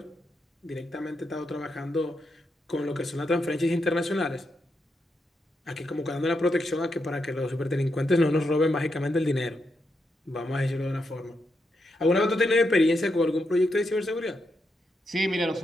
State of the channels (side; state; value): both; normal; correlation 0.83